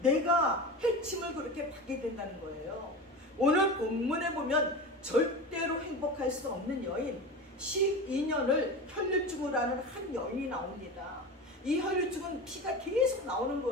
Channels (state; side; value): normal; both; correlation 0.28